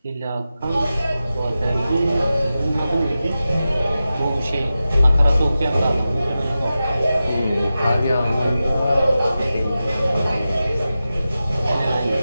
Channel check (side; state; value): both; inverted; correlation -0.93